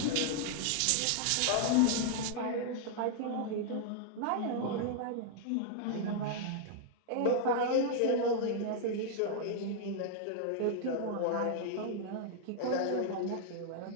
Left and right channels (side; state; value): both; different; correlation -0.01